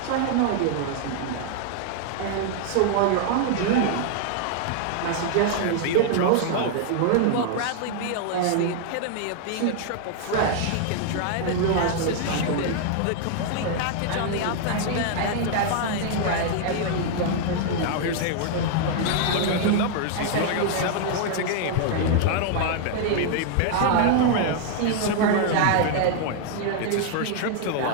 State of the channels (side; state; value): both; different; correlation 0.00